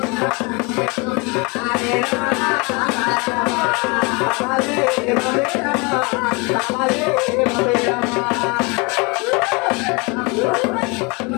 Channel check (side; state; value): right; quieter; 29.1 dB